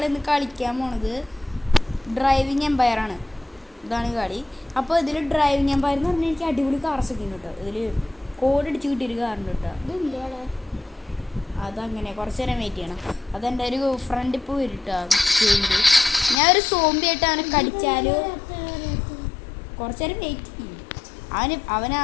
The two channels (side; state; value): right; drops out; at 16.4 s